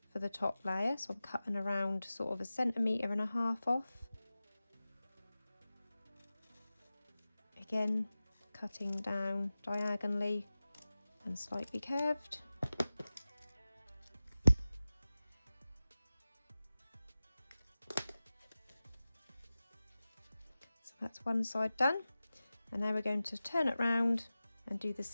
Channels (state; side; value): inverted; both; correlation -0.96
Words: for the top layer. So I'm cutting around sort of 1.5 centimeters off. Again, cutting down diagonally and slightly curved. So that's one side done, and now we're going to turn it round and do the